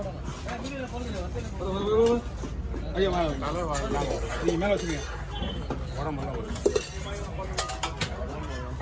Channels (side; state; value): both; identical; correlation 1.00